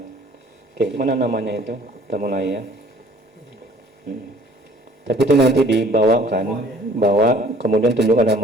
Oke, mana namanya itu? Kita mulai ya. Tapi itu nanti dibawakan, bawa kemudian tunjukkan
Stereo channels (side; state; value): both; normal; correlation 0.54